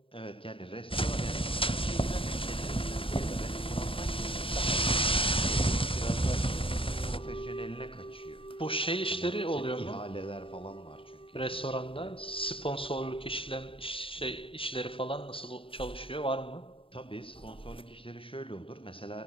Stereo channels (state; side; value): late; right; 0.26 ms